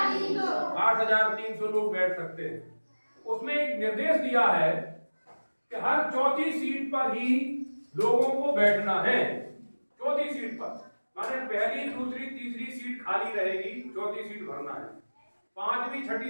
8,300 लोग बैठ सकते हैं। उसमें एक निर्देश दिया है कि हर चौथी सीट पर ही लोगों को बैठना है। चौथी सीट पर माने पहली, दूसरी, तीसरी सीट खाली रहेगी, चौथी सीट भरना है। पांचवी,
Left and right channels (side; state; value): both; inverted; correlation -1.00